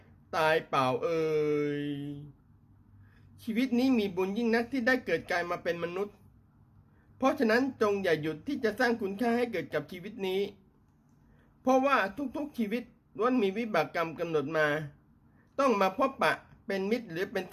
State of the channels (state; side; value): identical; both; correlation 1.00